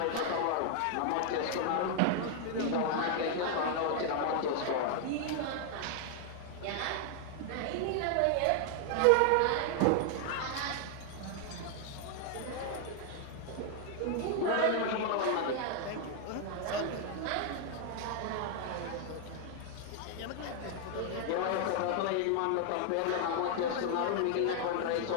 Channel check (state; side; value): different; both; correlation 0.00